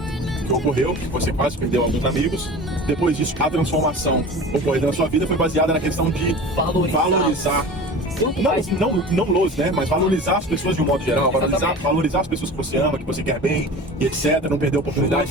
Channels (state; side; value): normal; both; correlation 0.37